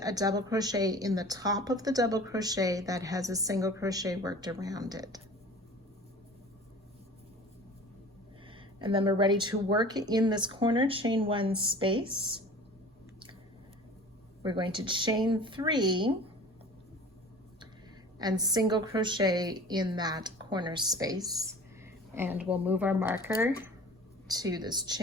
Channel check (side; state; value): both; normal; correlation 0.42